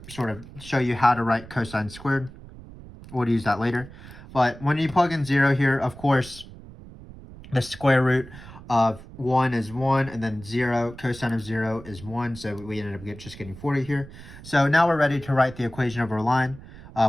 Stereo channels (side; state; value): right; noise; rumble, 17 dB below the sound